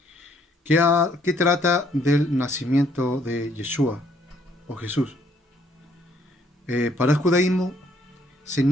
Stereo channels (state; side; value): normal; both; correlation 0.66